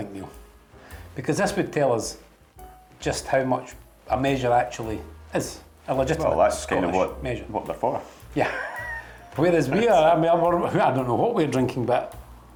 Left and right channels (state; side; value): identical; both; correlation 1.00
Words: Neil, because this would tell us just how much a measure actually is. A legitimate Well, that's Scottish kind of measure. what they're for. Yeah. Whereas we are, I mean, I don't know what we're drinking, but